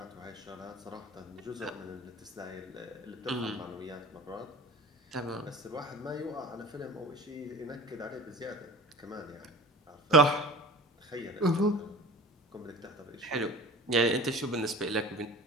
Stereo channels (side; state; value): both; normal; correlation 0.40